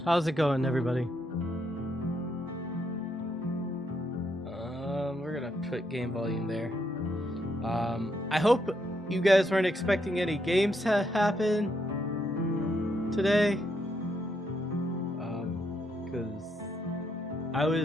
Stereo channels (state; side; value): normal; both; correlation 0.77